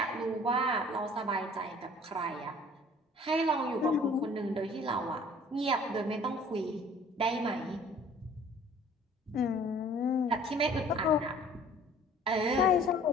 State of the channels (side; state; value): both; normal; correlation 0.52